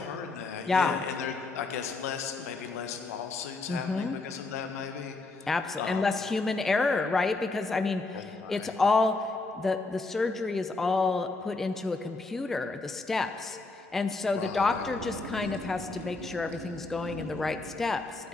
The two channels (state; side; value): quieter; right; 3.5 dB